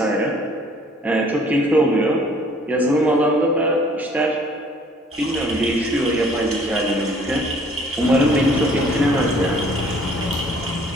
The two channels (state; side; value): normal; both; correlation 0.57